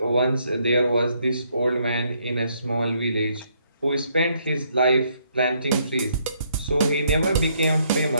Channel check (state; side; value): inverted; both; correlation -0.71